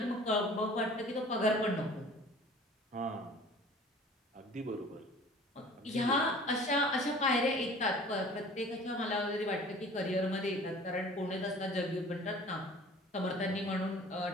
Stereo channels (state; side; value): normal; both; correlation 0.47